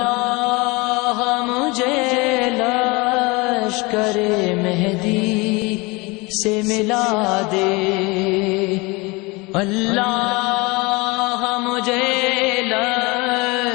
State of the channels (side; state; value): right; quieter; 25.5 dB